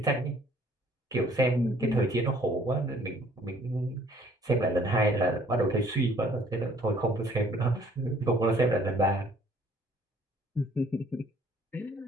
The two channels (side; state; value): both; normal; correlation 0.59